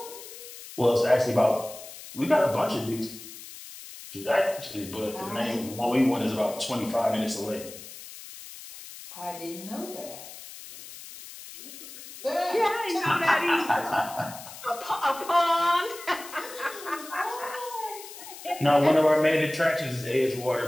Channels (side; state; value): left; noise; hiss, 14 dB below the sound